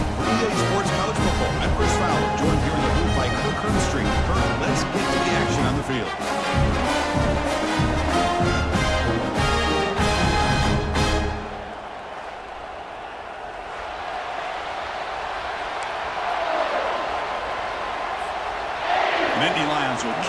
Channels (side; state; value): both; identical; correlation 1.00